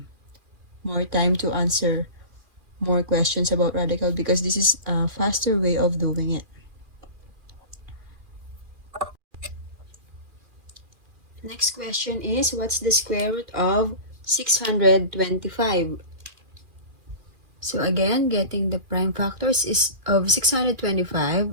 more time to answer more questions about radical because this is a faster way of doing it. Next question is, what's the square root of 625. So again, getting the prime factors is of 625.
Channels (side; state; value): left; late; 2.4 ms